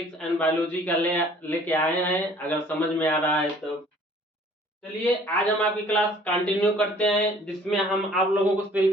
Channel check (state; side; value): normal; both; correlation 0.54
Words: एंड बायोलॉजी का लेके आए हैं, अगर समझ में आ रहा है तो। चलिए आज हम आपकी क्लास कंटिन्यू करते हैं, जिसमें हम आप लोगों को सेल